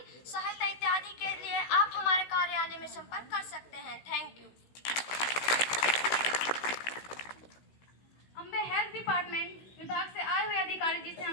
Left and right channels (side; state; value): right; late; 16 ms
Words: सहायता इत्यादि के लिए आप हमारे कार्यालय में संपर्क कर सकते हैं। Thank you. Ambe health department विभाग से आए हुए अधिकारी जी से